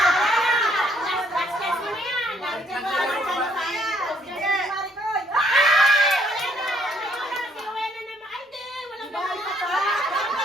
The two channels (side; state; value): both; normal; correlation 0.67